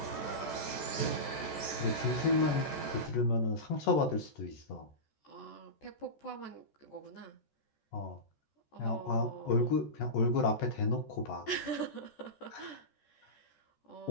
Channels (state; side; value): late; right; 14 ms